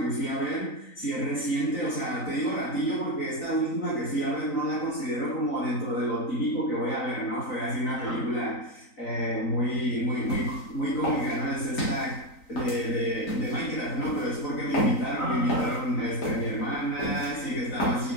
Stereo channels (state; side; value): late; right; 3.9 ms